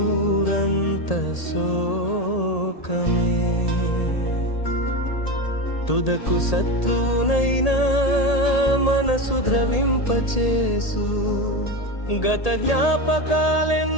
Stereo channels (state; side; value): late; right; 1.8 ms